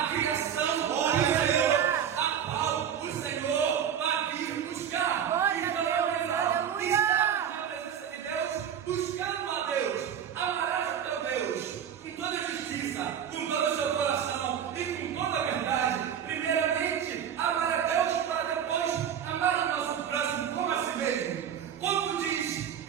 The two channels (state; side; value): quieter; left; 8.8 dB